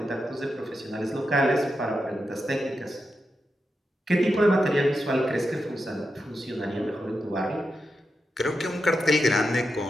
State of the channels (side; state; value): both; normal; correlation 0.88